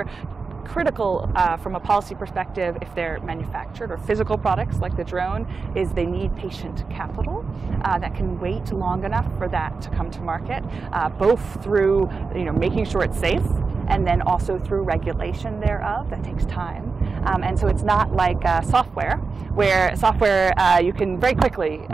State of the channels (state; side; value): quieter; left; 4.6 dB